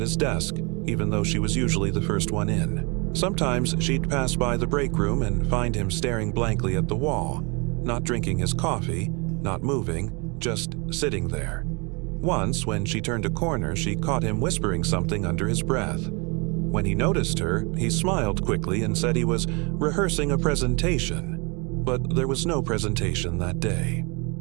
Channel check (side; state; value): left; quieter; 30.6 dB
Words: his desk, even though she was usually the first one in. Sometimes she'd pass by the break room and find him staring blankly at the wall, not drinking his coffee, not moving, just sitting there. Once, when she turned a corner, she caught him whispering something under his breath. When he noticed her, he smiled quickly and said he was rehearsing a presentation. But there was no presentation that day.